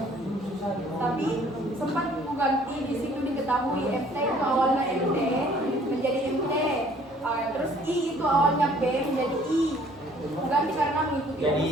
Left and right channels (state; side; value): normal; both; correlation 0.57